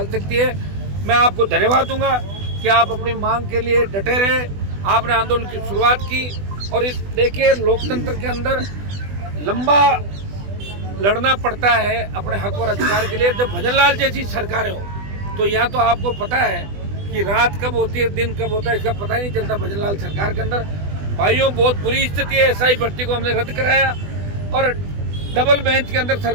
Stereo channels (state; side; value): late; left; 20 ms